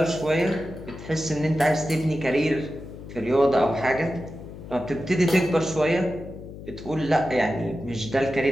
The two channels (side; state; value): left; noise; hum, 13 dB below the sound